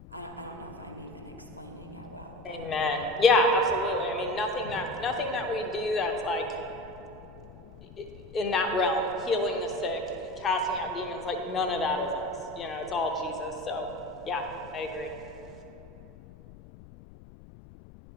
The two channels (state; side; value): noise; left; rumble, 19 dB below the sound